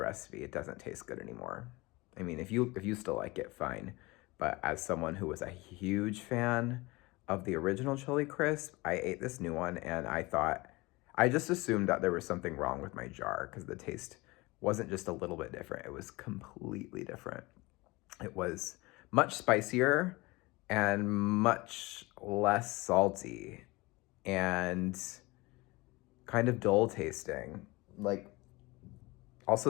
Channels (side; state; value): right; quieter; 22.9 dB